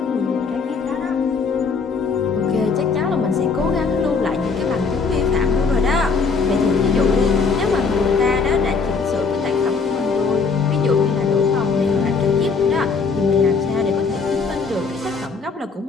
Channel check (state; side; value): quieter; right; 4.8 dB